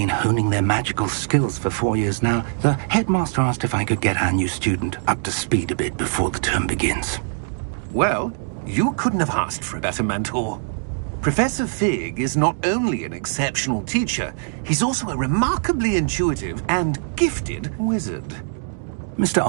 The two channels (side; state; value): left; silent; digital silence